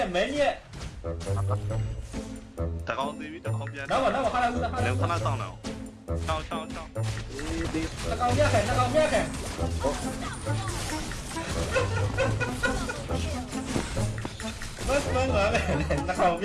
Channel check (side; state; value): both; identical; correlation 1.00